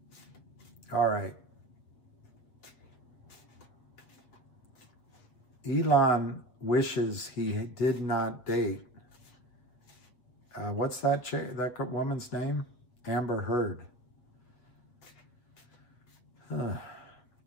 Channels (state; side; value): late; right; 7.9 ms